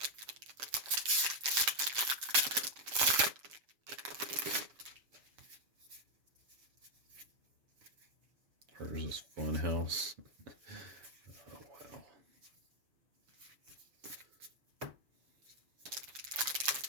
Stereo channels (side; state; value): left; late; 7.0 ms